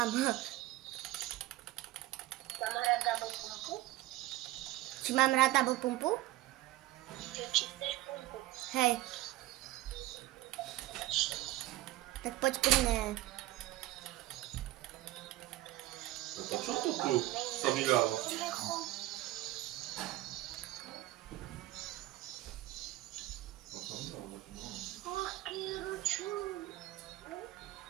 Mám hrať double pumpu? Či mám rád double pumpu? Či chceš pumpu? Hej. Tak poď pri mne. To čo to tu sa vydalo?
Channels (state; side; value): quieter; left; 16.6 dB